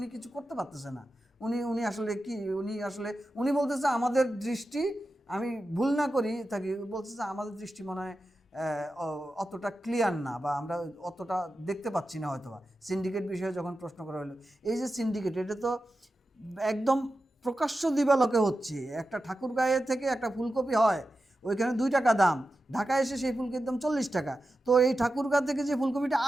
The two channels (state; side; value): normal; both; correlation 0.92